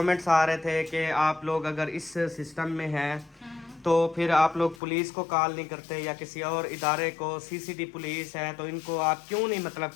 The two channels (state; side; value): drops out; right; at 4.8 s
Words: आ रहे थे कि आप लोग अगर इस सिस्टम में हैं तो फिर आप लोग पुलिस को कॉल नहीं करते या किसी और इदारे को, सीसीडी पुलिस है तो इनको आप क्यों नहीं मतलब